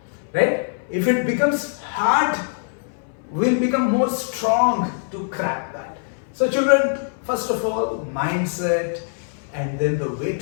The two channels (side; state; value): right; silent; 59 dB below the other